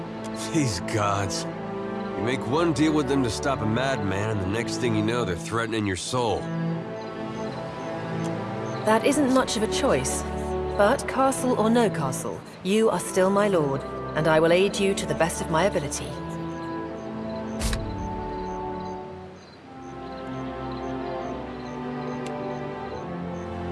These gods. You make one deal with them to stop a madman, and the next thing you know, they're threatening your soul. That isn't much of a choice. But castle or no castle, you are still my lord, and I will aid you to the best of my ability.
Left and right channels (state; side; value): identical; both; correlation 1.00